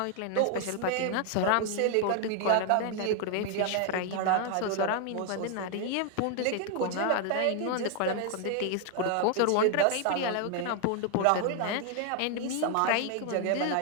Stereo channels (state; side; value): different; both; correlation 0.00